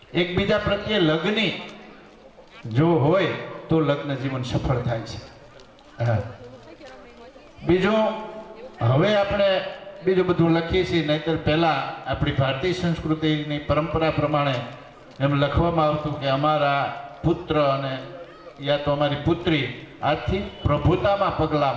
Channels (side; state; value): both; identical; correlation 1.00